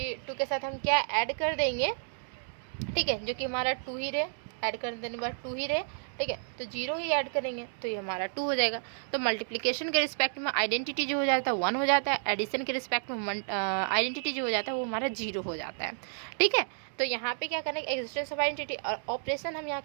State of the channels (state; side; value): silent; left; digital silence